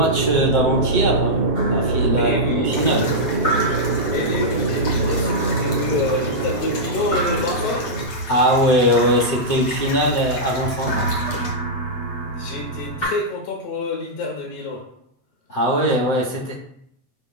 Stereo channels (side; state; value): right; late; 8.6 ms